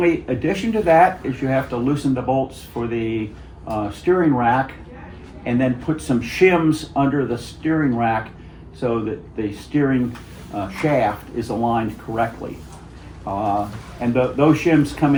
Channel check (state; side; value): identical; both; correlation 1.00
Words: addition to that is you have to loosen the bolts for the steering rack and then put some shims under the steering rack so that the steering shaft is aligned correctly. And those shims come